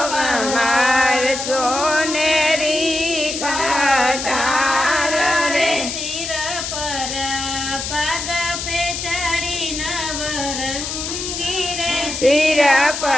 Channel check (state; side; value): noise; left; hiss, 5 dB below the sound